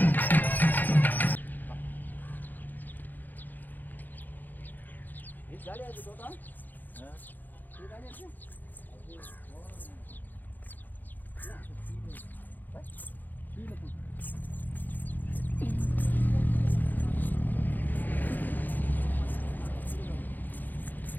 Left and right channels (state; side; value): late; right; 0.086 ms